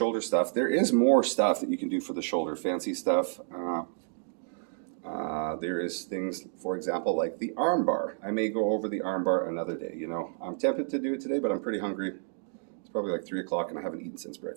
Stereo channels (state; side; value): silent; left; digital silence